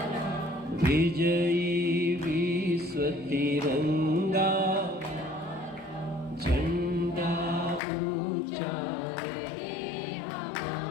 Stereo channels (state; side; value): drops out; right; at 7.8 s